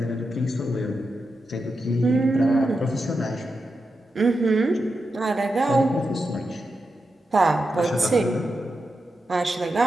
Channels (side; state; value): both; normal; correlation 0.88